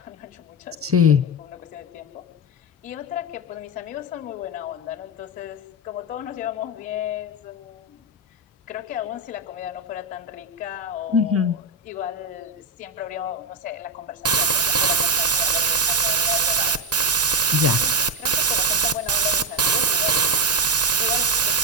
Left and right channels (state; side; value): normal; both; correlation 0.10